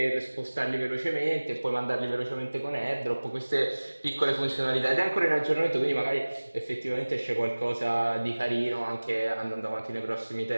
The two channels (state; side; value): inverted; both; correlation -1.00